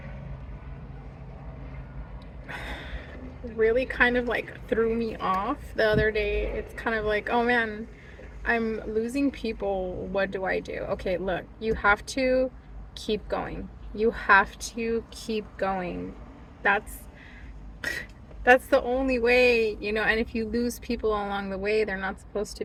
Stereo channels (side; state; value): both; identical; correlation 1.00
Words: really kind of like threw me off the other day. It's kind of like, oh man, I'm losing people. What do I do? Okay, look, you have to keep going. You have to keep going. That's that's the only way, and if you lose people along the way, they're not supposed